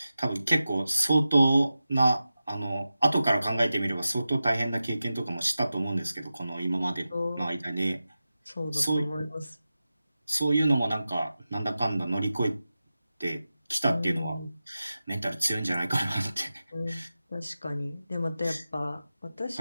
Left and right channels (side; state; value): both; inverted; correlation -0.93